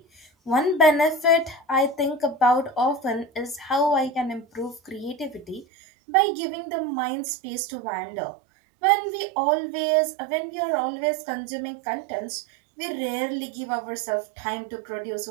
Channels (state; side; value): drops out; left; at 5.7 s